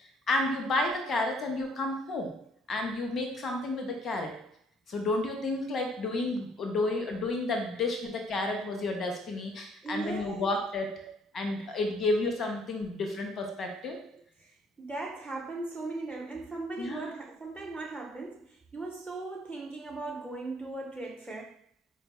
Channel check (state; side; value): normal; both; correlation 0.62